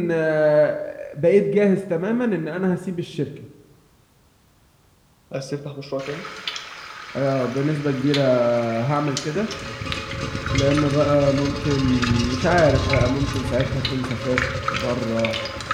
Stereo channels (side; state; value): both; identical; correlation 1.00